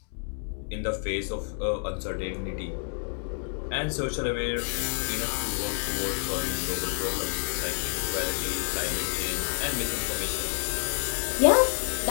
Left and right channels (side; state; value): right; silent; 59 dB below the other